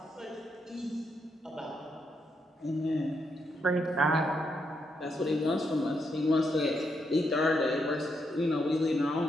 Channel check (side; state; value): both; normal; correlation 0.79